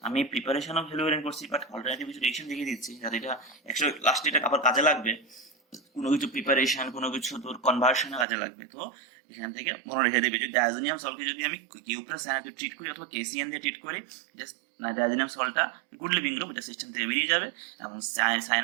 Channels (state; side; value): drops out; left; at 8.2 s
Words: আমি প্রিপারেশন অফ হেলোয়ারিন করছি, বাট অল্টারনেটিভ কিছু রিঅ্যাকশন দেখিয়ে দিচ্ছি যাতে এটা লাস্টে এটা আবার কাজে লাগবে, কোনো কিছু প্রিপারেশন কোনো কিছু তোর কনভার্সনে কাজে লাগবে। তো এখান থেকে মনে রেখে দেবে। যদি ডায়াজোনিয়াম সল্টকে যদি আমি কিউ প্লাস সায়ানাইড ট্রিট করি অথবা কেসিএন দিয়ে ট্রিট করি, জাস্ট ডায়াজোনিয়াম সল্টটা গুড লিভিং গ্রুপ, এটা সিস্টেম থেকে বেরিয়ে যাবে এবং